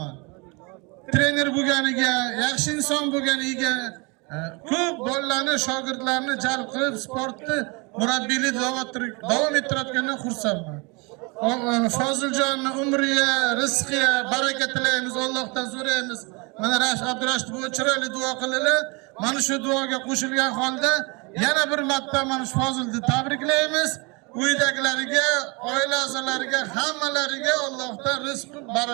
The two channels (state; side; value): quieter; left; 29.0 dB